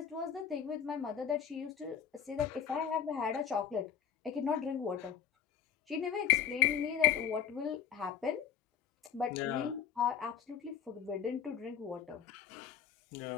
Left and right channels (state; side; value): quieter; right; 8.4 dB